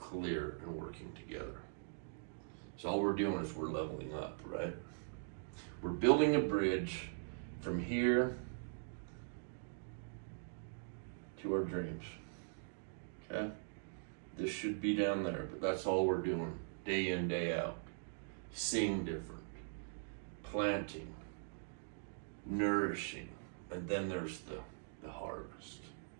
and working together. So all we're doing is we're leveling up, right? We're building a bridge from here to our dreams. Okay? This should be down there, but that's all we're doing day in, day out. Seeing different, planting, nourishing, and then there's the harvest.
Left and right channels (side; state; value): left; silent; digital silence